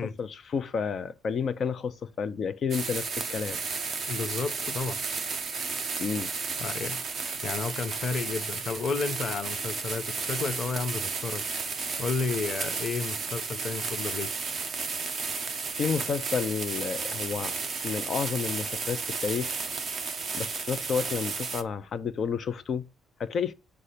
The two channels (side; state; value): both; normal; correlation 0.72